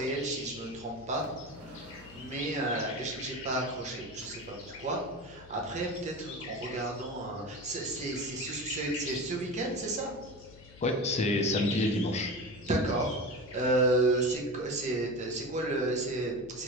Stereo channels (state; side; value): noise; left; hum, 20 dB below the sound